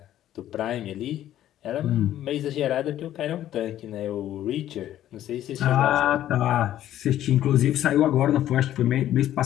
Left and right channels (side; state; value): right; quieter; 12.4 dB